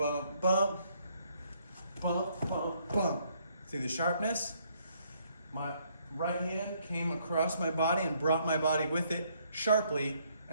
bump, bump, bump, bump. See the sharpness? My right hand came across my body and brought my body with it sharply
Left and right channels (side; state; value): both; inverted; correlation -0.68